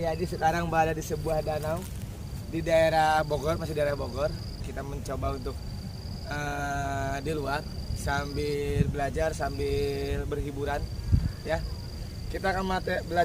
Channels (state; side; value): identical; both; correlation 1.00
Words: sekarang berada di sebuah danau di daerah Bogor, masih daerah Bogor. Kita mencoba untuk di luar sambil belajar, sambil berhiburan, ya. Kita akan